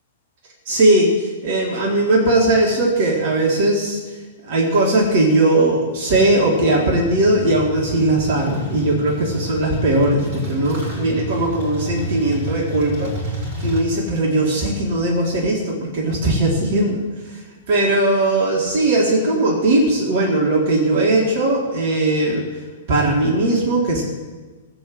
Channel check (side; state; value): both; inverted; correlation -0.37